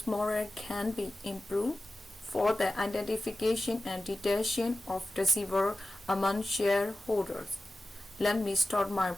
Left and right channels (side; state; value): both; normal; correlation 0.94